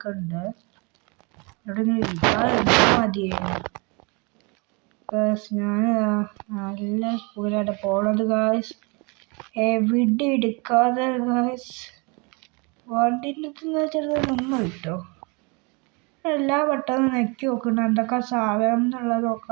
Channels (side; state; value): left; quieter; 30.2 dB